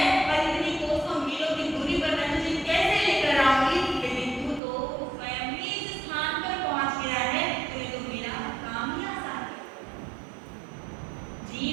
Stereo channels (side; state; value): left; drops out; at 4.6 s